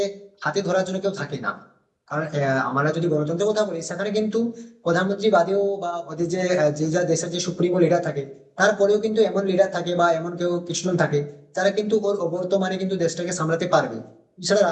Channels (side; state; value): both; identical; correlation 1.00